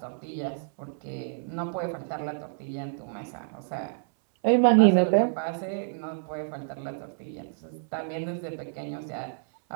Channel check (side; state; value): left; silent; 59 dB below the other